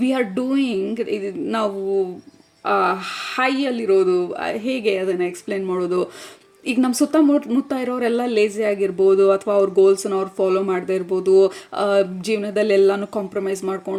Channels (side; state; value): both; identical; correlation 1.00